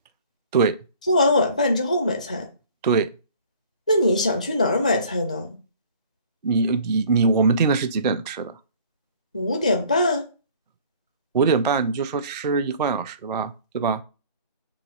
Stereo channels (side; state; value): both; inverted; correlation -0.51